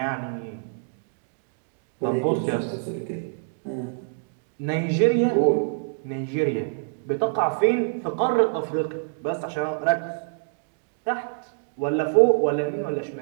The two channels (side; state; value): left; silent; digital silence